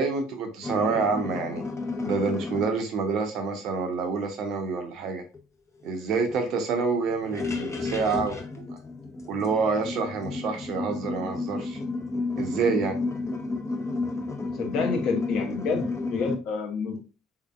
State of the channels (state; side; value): normal; both; correlation 0.56